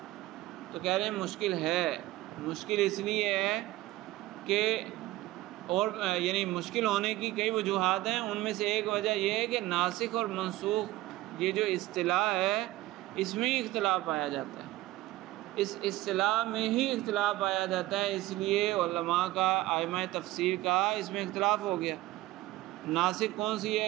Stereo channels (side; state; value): left; quieter; 17.1 dB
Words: تو کہہ رہے ہیں مشکل ہے، مشکل اس لیے ہے کہ اور یعنی مشکل ہونے کی کئی وجوہات ہیں، ان میں سے ایک وجہ یہ ہے کہ ناسخ اور منسوخ یہ جو اصطلاح ہے اس میں ہی اختلاف پایا جاتا ہے، اس اصطلاح میں ہی اختلاف پایا جاتا ہے، اس لیے علماء کا، ائمہ تفسیر کا اس میں اختلاف ہو گیا، ناسخ کون سی